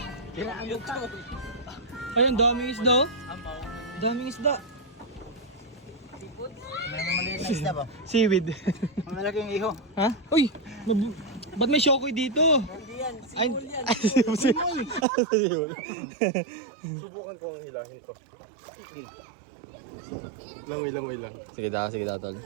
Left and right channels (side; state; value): left; drops out; at 15.1 s